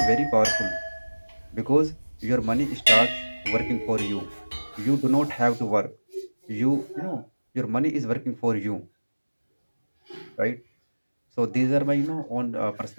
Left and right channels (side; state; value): both; inverted; correlation -1.00